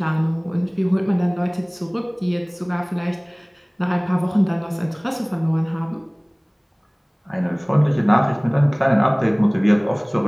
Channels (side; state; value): both; identical; correlation 1.00